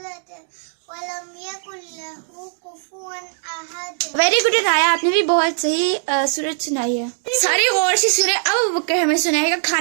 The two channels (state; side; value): silent; left; digital silence